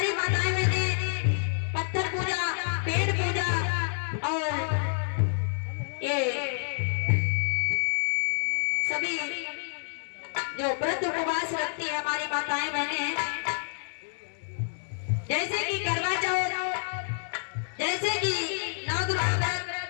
माताएं बहनें पत्थर पूजा, पेड़ पूजा और ये सभी जो व्रत उपवास रखती है हमारी माताएं बहनें, जैसे कि करवा चौथ, जैसे कि नवदुर्गा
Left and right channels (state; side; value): silent; right; digital silence